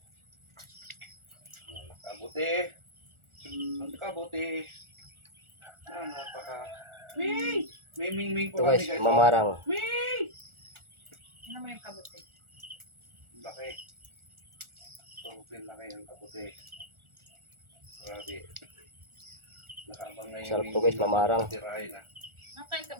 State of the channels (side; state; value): left; late; 1.4 ms